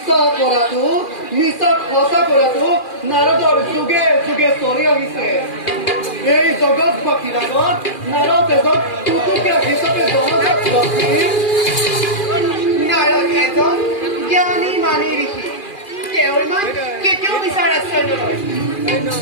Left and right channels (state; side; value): late; right; 2.4 ms